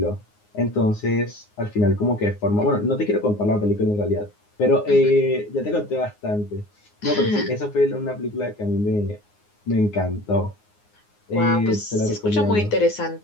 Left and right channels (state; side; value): late; right; 9.6 ms